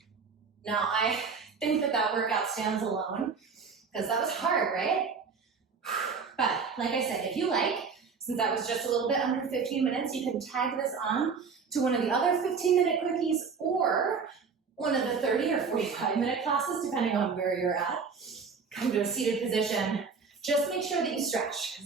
Now, I think that workout stands alone, because that was hard, right? But like I said, if you like, since that was just a little bit under 15 minutes, you can tag this on to one of the other 15-minute quickies or one of the 30 or 45-minute classes, depending on where you're at. Come to a seated position. Just make sure that you stretch,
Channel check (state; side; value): quieter; left; 5.4 dB